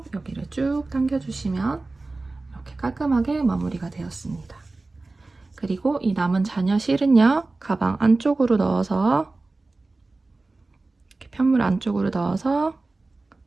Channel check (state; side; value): quieter; left; 3.3 dB